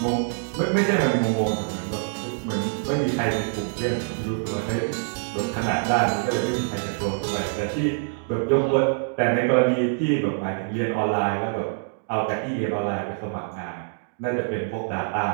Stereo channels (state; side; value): silent; left; digital silence